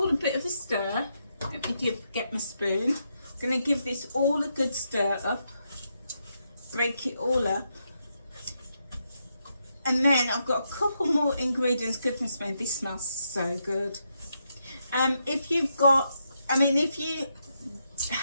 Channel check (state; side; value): inverted; both; correlation -0.81